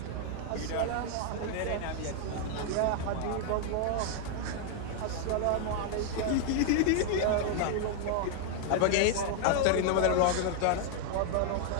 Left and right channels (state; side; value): different; both; correlation 0.00